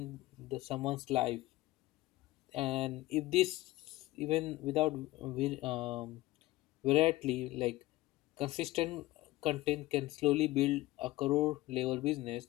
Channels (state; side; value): quieter; right; 18.2 dB